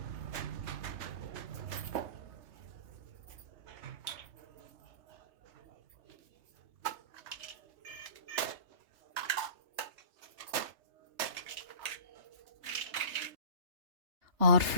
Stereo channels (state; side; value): late; left; 3.3 ms